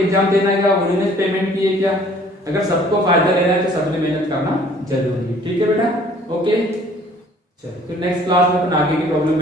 देना है, उन्होंने पेमेंट किए क्या, अगर सबको फायदा लेना है तो सबने मेहनत करना जरूरी है, ठीक है बेटा, ओके। चलो फिर नेक्स्ट क्लास में अपन आगे की प्रॉब्लम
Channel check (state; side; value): normal; both; correlation 0.55